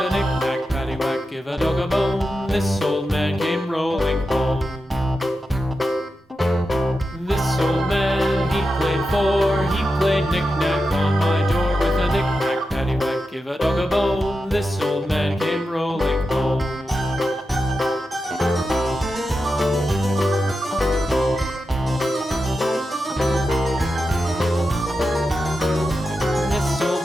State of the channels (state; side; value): normal; both; correlation 0.89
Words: knick-knack, paddywhack, give a dog a bone. This old man came rolling home. This old man, he played four. He played knick-knack on my door with a knick-knack, paddywhack, give a dog a bone. This old man came rolling home. This old